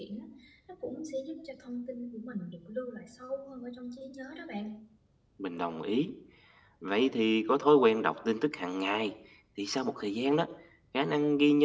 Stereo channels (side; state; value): both; identical; correlation 1.00